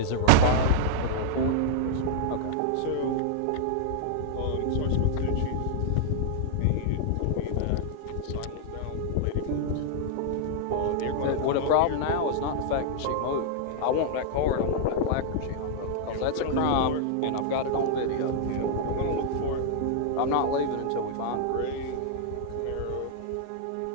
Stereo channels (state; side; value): different; both; correlation -0.01